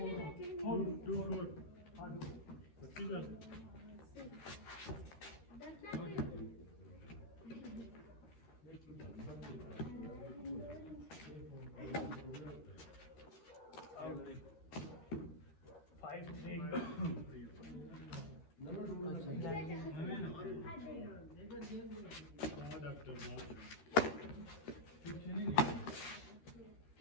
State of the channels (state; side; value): late; right; 13 ms